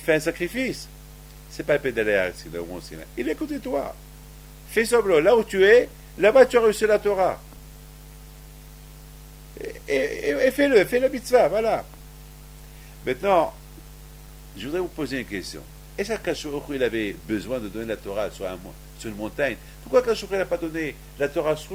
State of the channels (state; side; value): identical; both; correlation 1.00